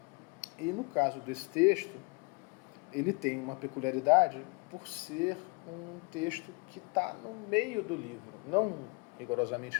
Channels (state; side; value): quieter; right; 29.9 dB